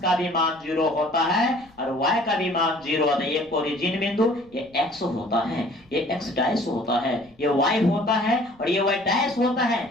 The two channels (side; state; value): left; noise; rumble, 30 dB below the sound